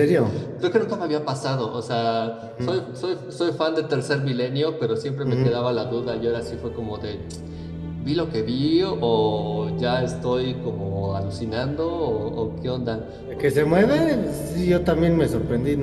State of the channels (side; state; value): both; identical; correlation 1.00